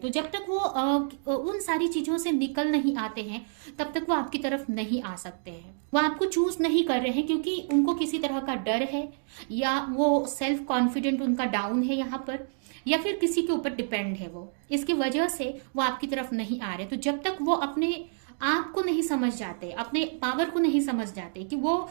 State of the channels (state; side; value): silent; left; digital silence